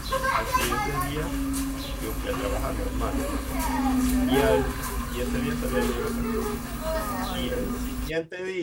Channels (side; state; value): both; identical; correlation 1.00